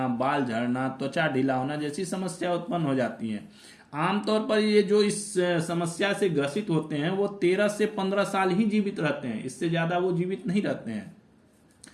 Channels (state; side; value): identical; both; correlation 1.00